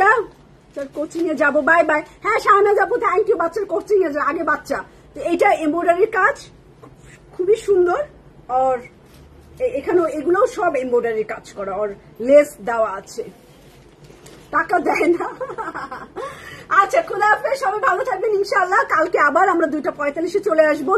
কোচিং এ যাবো, বাই বাই। হ্যাঁ শাহনাজ আপু থ্যাংক ইউ, বাচ্চার কোচিং এ আগে বাচ্চা। তো এইটা এমব্রয়ডারির কাজ খুবই সুন্দর, আর এখানেও এগুলোও সব এমব্রয়ডারির কাজ করা, আর লেস দেওয়া আছে। টাকা দেয় না। আচ্ছা, খুদা হাফেজ, সবাই ভালো থাকবেন ইনশাআল্লাহ। কালকে আবার আমরা 2:45 চলে আসবো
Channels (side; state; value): both; identical; correlation 1.00